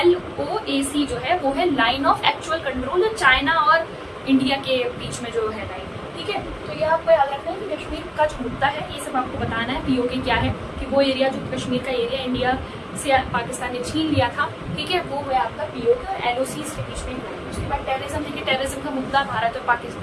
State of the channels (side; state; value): both; identical; correlation 1.00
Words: LOAC जो है वो है line of actual control, China और इंडिया के बीच में जो है लाइन। ठीक है, तो ये आपको याद रखना है कि कश्मीर का जो मुद्दा है ये सब आपको बताना है। पीओके क्या है कि वो एरिया जो कश्मीर का एरिया इंडिया से पाकिस्तान ने छीन लिया था, ठीक है, वो है आपका पीओके और LOC के बीच में। उसके बाद टेररिज्म, देखिए टेररिज्म का मुद्दा भारत और